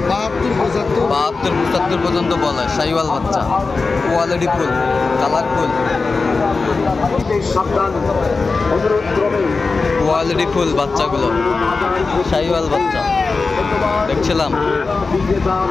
72, 75 পর্যন্ত বলে। শাহিওয়াল বাচ্চা, quality full, colourful, quality full বাচ্চাগুলো, শাহিওয়াল বাচ্চা দেখছিলাম।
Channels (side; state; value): right; quieter; 4.1 dB